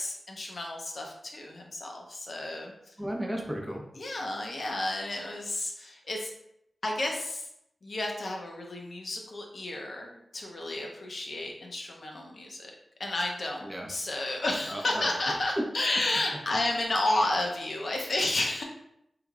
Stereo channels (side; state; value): both; normal; correlation 0.93